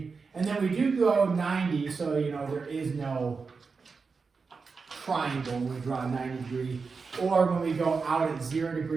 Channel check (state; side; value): quieter; left; 4.8 dB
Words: And then we do go 90, so you know there is no triangle when we draw a 90 degree. Or when we go out at 0